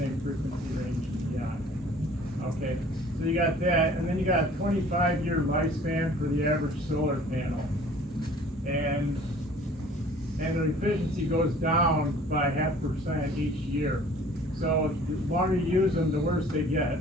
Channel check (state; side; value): normal; both; correlation 0.51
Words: frequency range and beyond. Okay, so you got that, and then you got a 25-year lifespan for the average solar panel. And the efficiency goes down by 0.5% each year. So the longer you use them, the worse they get.